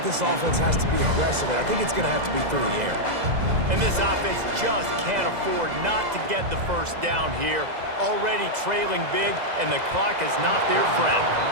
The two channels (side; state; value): left; late; 2.0 ms